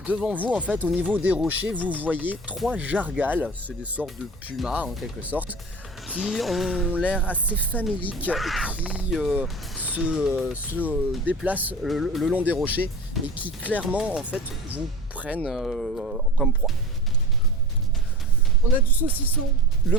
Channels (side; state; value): both; normal; correlation 0.35